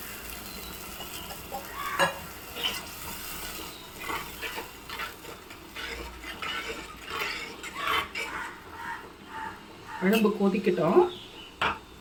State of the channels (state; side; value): identical; both; correlation 1.00